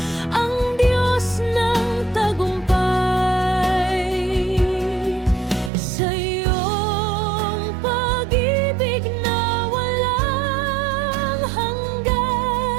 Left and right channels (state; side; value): drops out; left; at 5.7 s